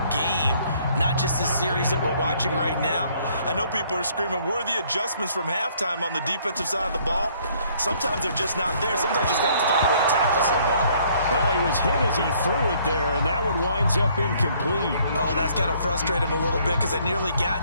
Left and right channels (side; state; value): both; inverted; correlation -0.63